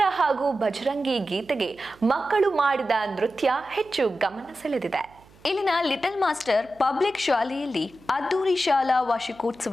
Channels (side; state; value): right; noise; hum, 27 dB below the sound